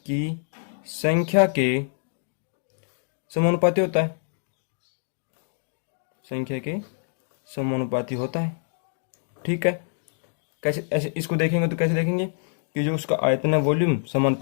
समानुपाती होता है। ठीक है, कैसे, ऐसे इसको देखेंगे तो कैसे देखेंगे कि जो उसका आयतन है, वॉल्यूम,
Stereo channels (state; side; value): silent; right; digital silence